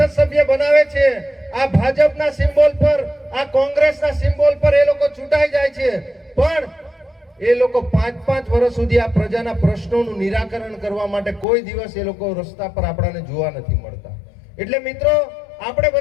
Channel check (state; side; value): drops out; right; at 11.5 s